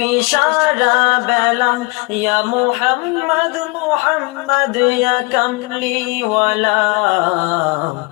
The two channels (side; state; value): right; quieter; 27.2 dB